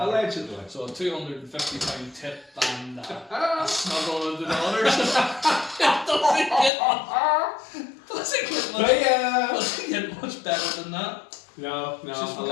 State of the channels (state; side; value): drops out; right; at 6.7 s